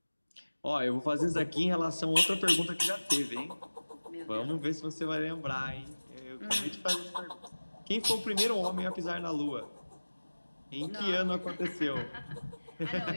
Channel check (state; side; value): inverted; both; correlation -1.00